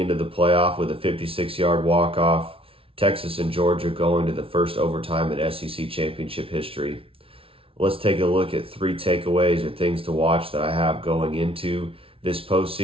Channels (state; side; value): late; left; 0.26 ms